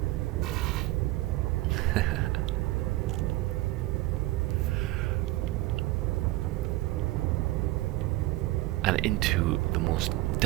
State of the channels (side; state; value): left; quieter; 18.3 dB